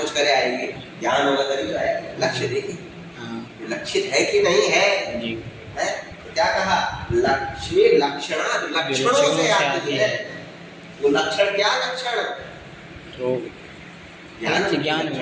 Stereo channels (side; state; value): both; identical; correlation 1.00